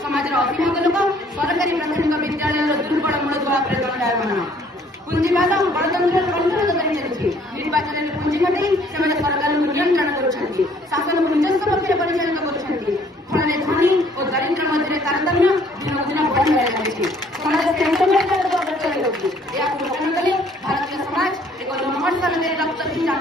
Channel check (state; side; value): normal; both; correlation 0.60